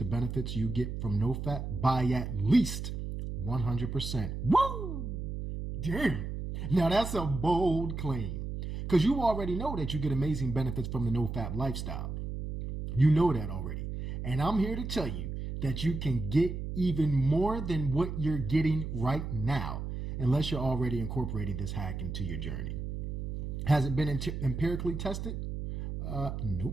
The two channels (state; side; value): noise; right; hum, 5 dB below the sound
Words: benefits you get from Nofap by at least 100%. Woo! Damn! Now that's a bold claim. Because you already know that you get amazing benefits from the Nofap lifestyle. You know that already. And I'm here to tell you that you can get even more than what you're getting right now, unless you're already incorporating this hack into your journey. Has it been empirically tested?